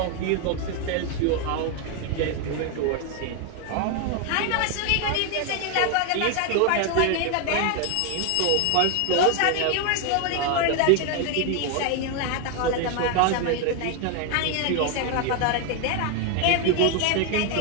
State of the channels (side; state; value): both; different; correlation 0.01